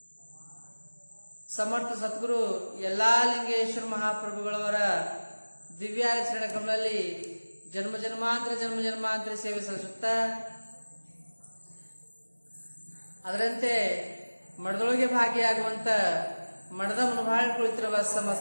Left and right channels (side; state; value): both; inverted; correlation -1.00